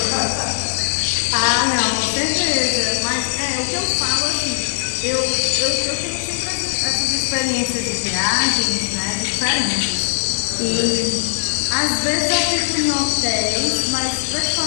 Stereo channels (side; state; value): right; silent; digital silence